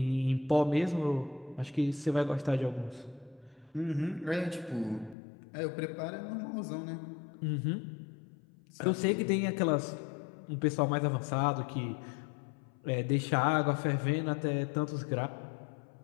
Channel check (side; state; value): right; drops out; at 5.2 s